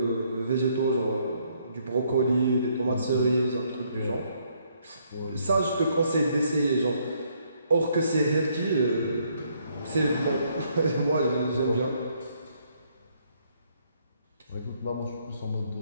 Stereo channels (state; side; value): inverted; both; correlation -0.70